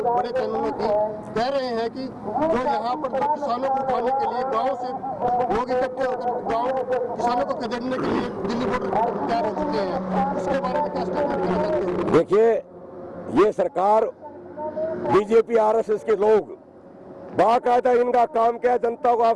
बड़े चैनलों की कह रहे हैं कि जो यहाँ पर जो किसानों को उठाने के लिए गांव से लोग इकट्ठे होकर गांव किसानों को खदेड़ने के लिए दिल्ली बॉर्डर तैयार हो चुके हैं, उसके बारे में क्या स्टेटमेंट करना चाहते हैं? देखिए, ये सरकार बीजेपी आरएसएस के लोग बाकायदा इनका काम क्या है, जनता को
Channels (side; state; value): both; identical; correlation 1.00